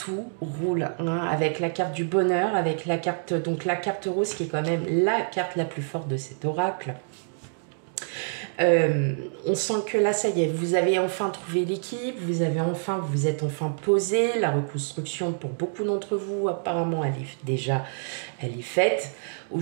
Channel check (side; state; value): left; silent; digital silence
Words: roule avec la carte du bonheur, avec la carte rose qui est quand même la carte la plus forte de cet oracle. On sent que là, ça y est, vous avez enfin trouvé l'équipe, vous êtes enfin posé. La reconstruction pour beaucoup d'entre vous, apparemment, elle est faite.